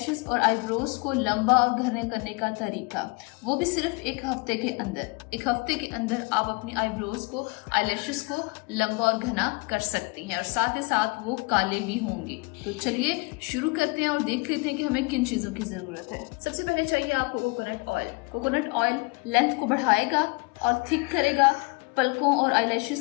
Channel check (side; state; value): right; quieter; 28.3 dB